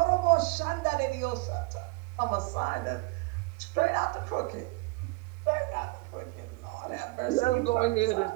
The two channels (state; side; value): quieter; left; 23.9 dB